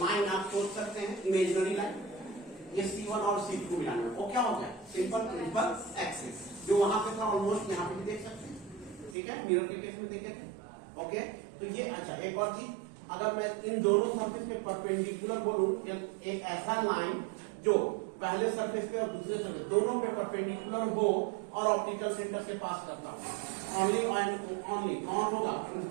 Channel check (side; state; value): left; drops out; at 9.2 s